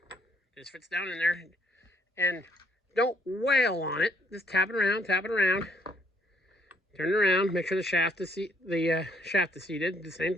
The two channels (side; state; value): both; normal; correlation 0.67